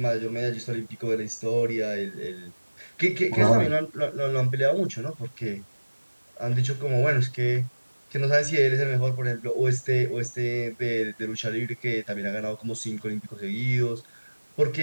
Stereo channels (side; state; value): both; inverted; correlation -1.00